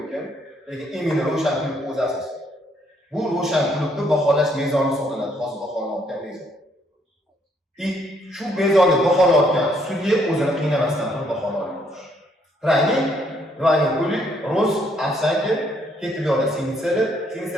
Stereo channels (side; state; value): both; normal; correlation 0.70